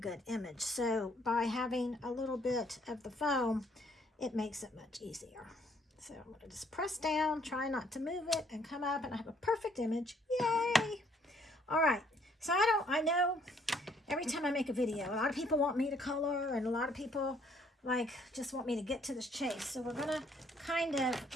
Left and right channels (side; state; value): both; normal; correlation 0.65